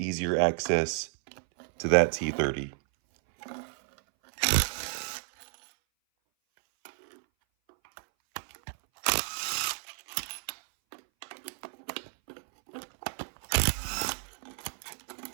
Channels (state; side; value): silent; left; 57 dB below the other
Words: access to that T30.